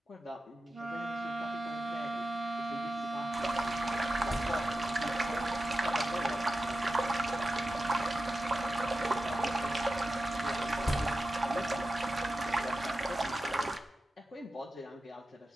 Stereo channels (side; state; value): both; normal; correlation 0.92